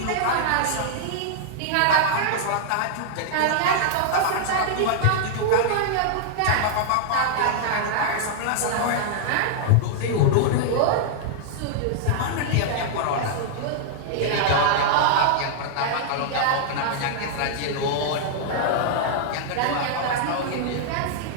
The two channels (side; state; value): both; different; correlation -0.01